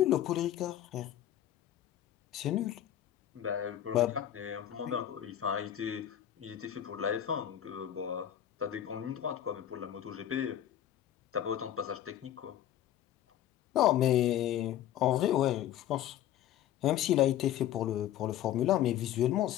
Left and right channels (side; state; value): right; quieter; 11.4 dB